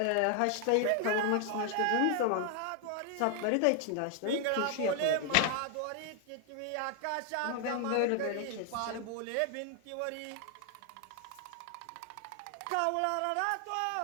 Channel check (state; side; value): different; both; correlation 0.00